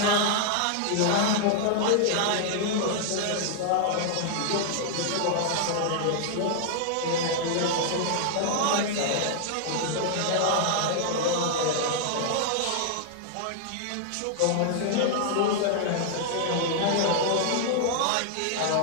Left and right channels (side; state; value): both; different; correlation -0.01